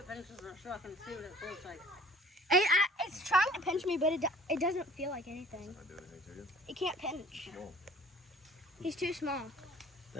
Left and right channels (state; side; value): normal; both; correlation 0.49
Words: finishes our truck and see what it feels like. It's trying to pinch me, but it doesn't feel like anything. Not do anything to you. It can't pinch. No. He's too small.